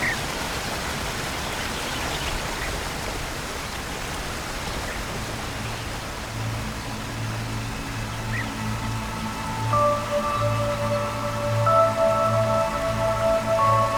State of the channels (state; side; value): identical; both; correlation 1.00